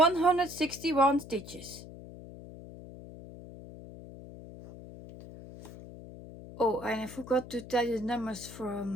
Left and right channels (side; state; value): left; noise; hum, 15 dB below the sound